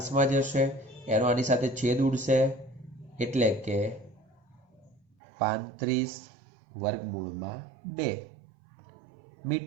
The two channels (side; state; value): left; drops out; at 5.0 s